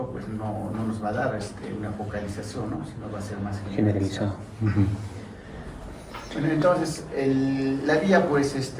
pues no nos va a dar una focalización, ¿no? Sino va a ser más generalizado. Bueno, entonces, la vía pues,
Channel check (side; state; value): both; identical; correlation 1.00